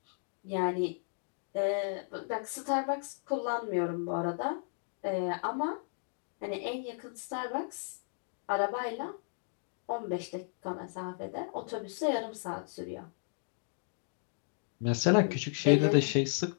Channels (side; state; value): right; silent; digital silence